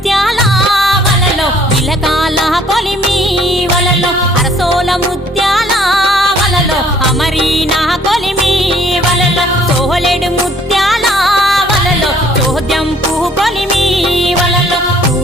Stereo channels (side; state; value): both; normal; correlation 0.59